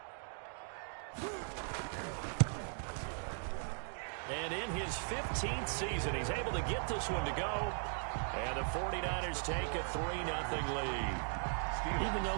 And in his 15th season, he's able to get this one to go. And the 49ers take a 3-0 lead. Even though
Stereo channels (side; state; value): left; silent; 52 dB below the other